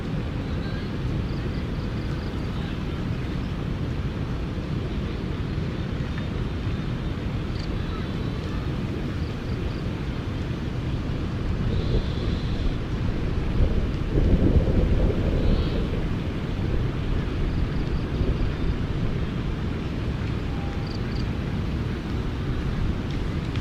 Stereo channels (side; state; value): both; identical; correlation 1.00